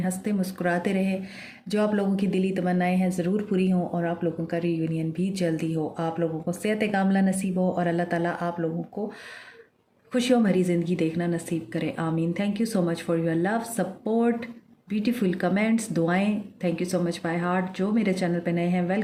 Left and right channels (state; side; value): identical; both; correlation 1.00